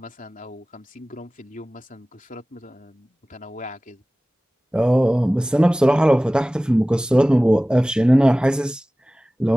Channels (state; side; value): normal; both; correlation 0.98